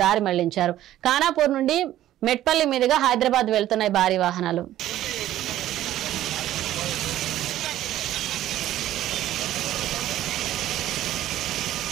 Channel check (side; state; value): left; quieter; 13.3 dB